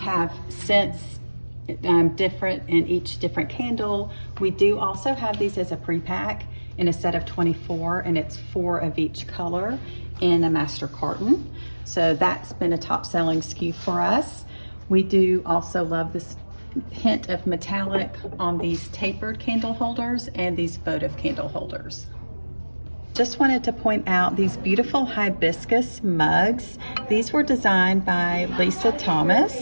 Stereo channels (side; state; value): both; inverted; correlation -1.00